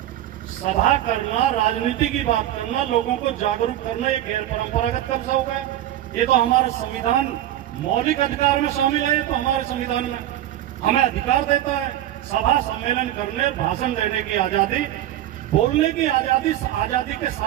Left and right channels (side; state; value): left; quieter; 12.9 dB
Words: सभा करना, राजनीति की बात करना, लोगों को जागरूक करना, ये गैर परंपरागत कब से हो गया? ये तो हमारा संविधान मौलिक अधिकार में शामिल है। तो हमारे संविधान में हमें अधिकार देता है सभा सम्मेलन करने, भाषण देने की आजादी, बोलने की आजादी। आजादी के